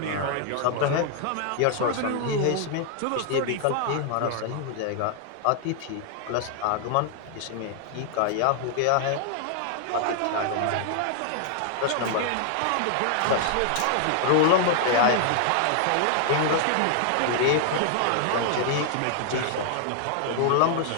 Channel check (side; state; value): both; different; correlation 0.00